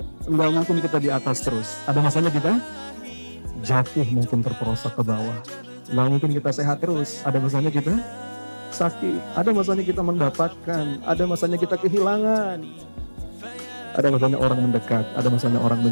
enggak mungkin kita di atas terus. Ada masanya kita jatuh, mungkin terperosok ke bawah. Enggak mungkin kita sehat terus. Ada masanya kita sakit. Ada masanya kita mendapatkan. Ada masanya kita kehilangan. Ada masanya orang mendekat. Ada masanya orang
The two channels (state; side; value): inverted; both; correlation -1.00